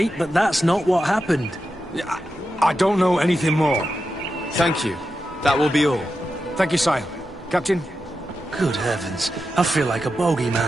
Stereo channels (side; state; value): both; normal; correlation 0.89